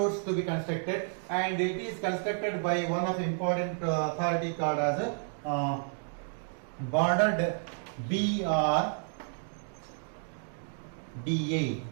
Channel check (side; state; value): left; silent; 57 dB below the other